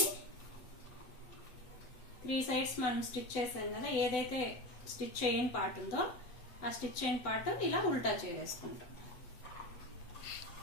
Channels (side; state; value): right; late; 7.9 ms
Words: 3 సైడ్స్ మనం స్టిచ్ చేసాం కదా, ఏదైతే స్టిచ్ చేయని పార్ట్ ఉందో ఆ స్టిచ్ చేయని పార్ట్ ఇలా ఉల్టా చేసేసుకుంటాం.